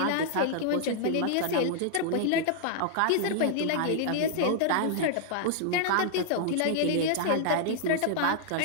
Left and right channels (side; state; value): both; different; correlation -0.01